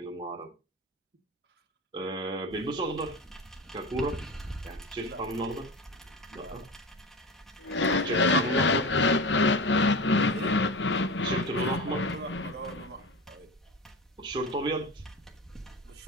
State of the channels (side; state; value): both; normal; correlation 0.27